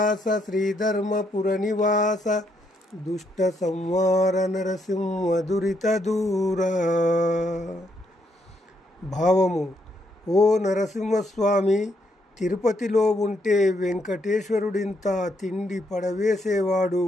శ్రీధర్మపుర నివాస దుష్ట సంహార నరసింహ దురిత దూర. భావము: ఓ నరసింహస్వామి, తిరుపతిలో ఉంటే వెంకటేశ్వరుడింత తిండి పడవేసేవాడు.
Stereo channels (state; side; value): normal; both; correlation 0.75